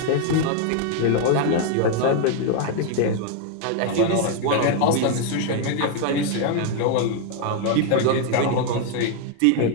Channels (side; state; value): both; different; correlation 0.01